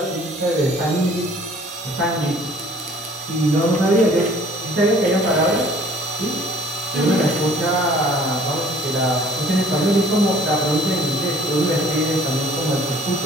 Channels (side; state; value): both; normal; correlation 0.54